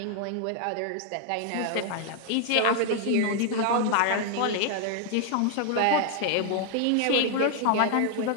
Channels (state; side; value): different; both; correlation 0.00